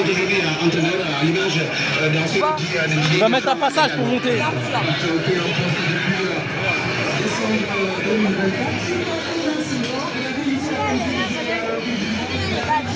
aujourd'hui entraîneurs à l'image dans ce qui On va mettre un passage pour monter.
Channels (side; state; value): both; identical; correlation 1.00